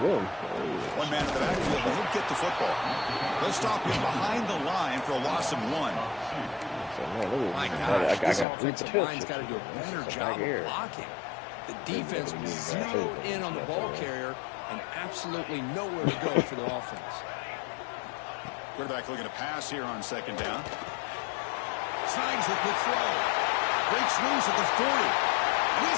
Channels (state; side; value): drops out; right; at 8.5 s